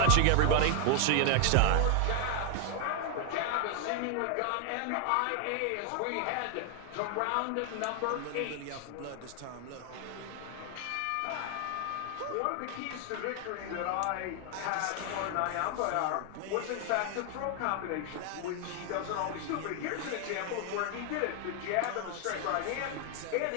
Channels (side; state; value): both; different; correlation 0.00